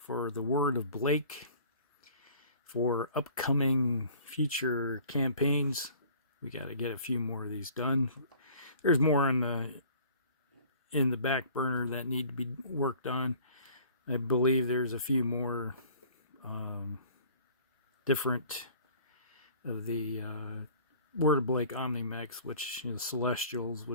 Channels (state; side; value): inverted; both; correlation -0.50